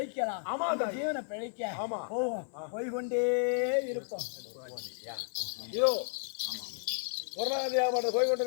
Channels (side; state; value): right; silent; 56 dB below the other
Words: அந்த ஜீவனை பிழைக்க போவோம், போய்கொண்டே இருப்போம். இதோ பொருளாதார